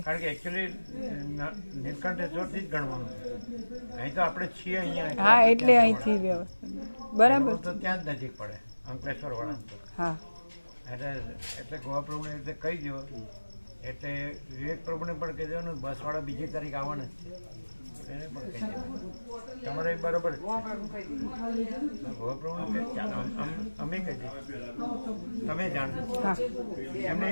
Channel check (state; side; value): inverted; both; correlation -1.00